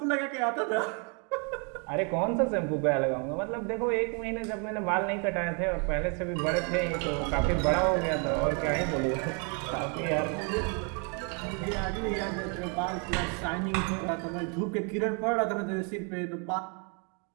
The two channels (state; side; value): quieter; left; 36.9 dB